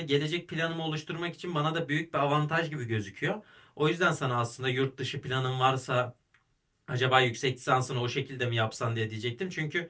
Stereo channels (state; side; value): identical; both; correlation 1.00